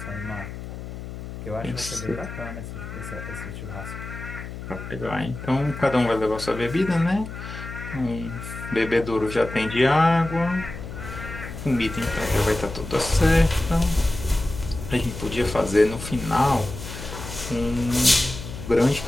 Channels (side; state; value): left; noise; hum, 10 dB below the sound